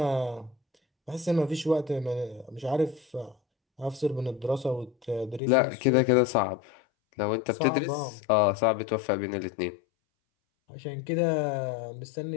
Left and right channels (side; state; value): right; drops out; at 5.4 s